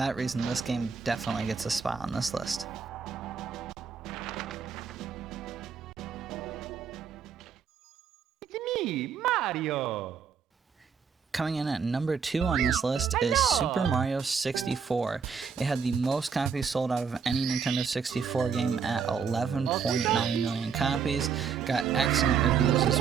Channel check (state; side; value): quieter; left; 6.3 dB